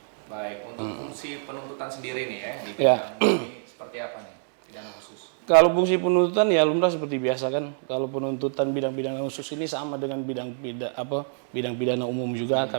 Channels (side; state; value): left; silent; 61 dB below the other